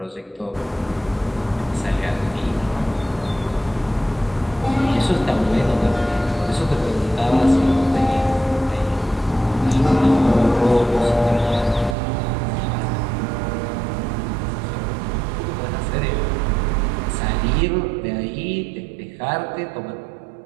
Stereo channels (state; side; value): drops out; left; at 12.0 s